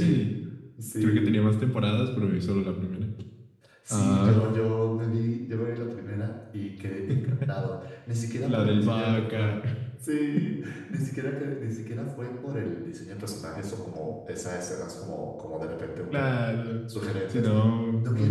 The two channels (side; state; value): both; identical; correlation 1.00